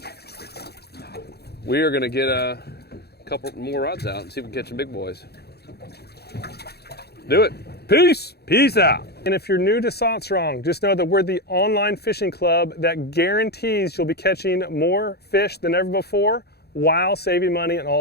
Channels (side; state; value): right; late; 0.47 ms